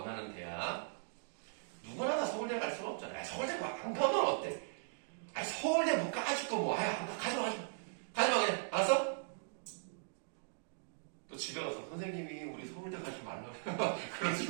대학. 누구나 다 서울대 갈 수가 없잖아요. 서울대 안 가면 어때? 서울대 못 가줄 거 뭐. 가지마 그냥. 알았어? 또 집에 가서 선생님이 우리 서울대 가지 말라고.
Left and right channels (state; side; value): silent; left; digital silence